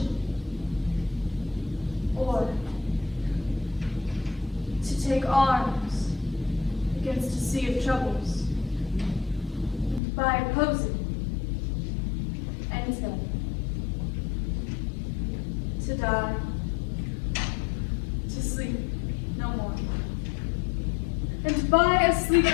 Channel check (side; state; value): right; drops out; at 10.0 s